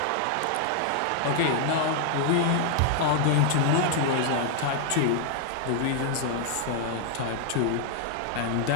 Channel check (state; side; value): different; both; correlation 0.00